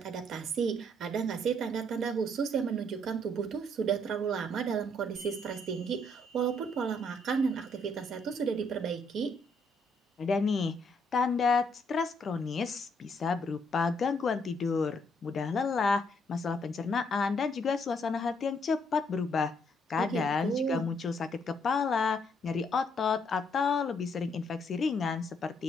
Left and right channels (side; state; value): both; normal; correlation 0.71